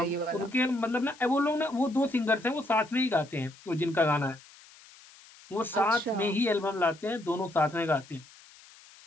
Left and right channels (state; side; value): noise; left; hiss, 23 dB below the sound